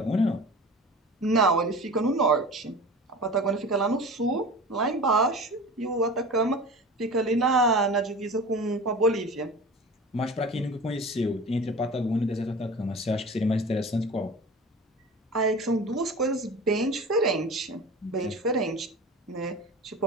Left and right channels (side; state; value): both; normal; correlation 0.36